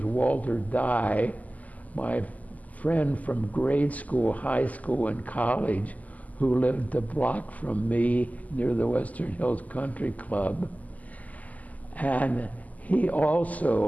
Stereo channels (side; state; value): right; late; 0.077 ms